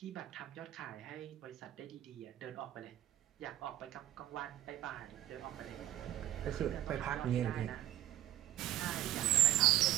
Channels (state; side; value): quieter; left; 13.7 dB